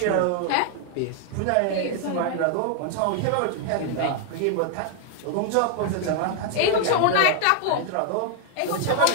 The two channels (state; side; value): different; both; correlation 0.00